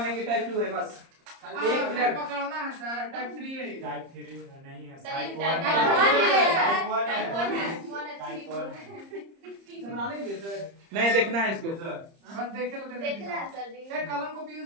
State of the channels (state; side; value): late; left; 30 ms